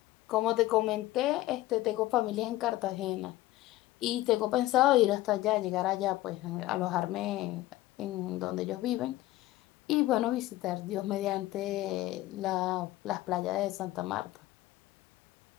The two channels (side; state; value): right; quieter; 16.5 dB